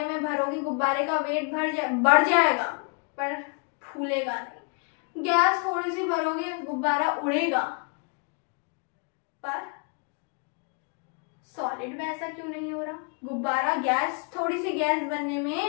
में भरोगे, गुब्बारे का वेट बढ़ जाएगा पर फूलेगा नहीं। गैस थोड़ी सी भरोगे, गुब्बारा उड़ेगा, पर सॉलिड में ऐसा क्यों नहीं हो रहा? गुब्बारा गैस, थोड़ी सी गैस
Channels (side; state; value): right; quieter; 37.3 dB